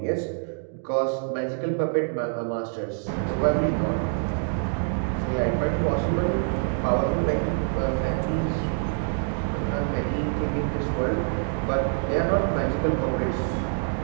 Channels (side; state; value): left; silent; 61 dB below the other